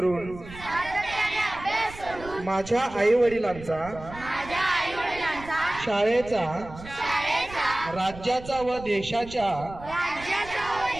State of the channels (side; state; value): right; noise; rumble, 15 dB below the sound